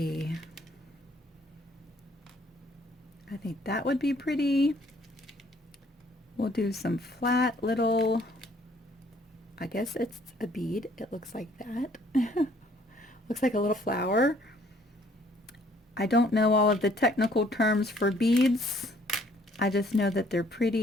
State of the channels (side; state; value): both; normal; correlation 0.61